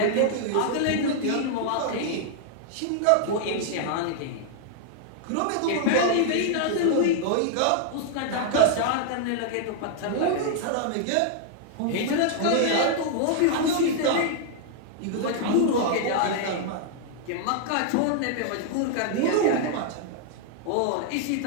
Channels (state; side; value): different; both; correlation -0.01